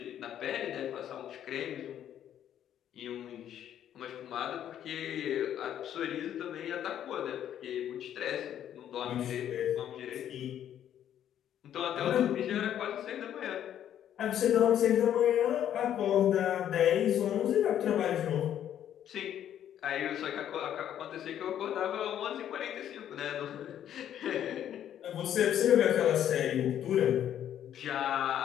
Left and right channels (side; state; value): right; quieter; 10.4 dB